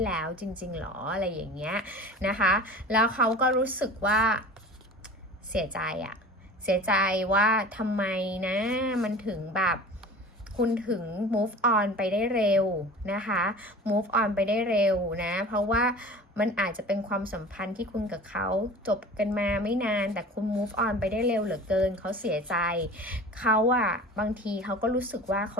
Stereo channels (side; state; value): both; normal; correlation 0.39